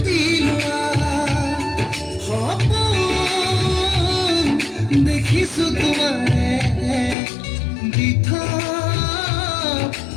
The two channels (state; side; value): drops out; right; at 7.2 s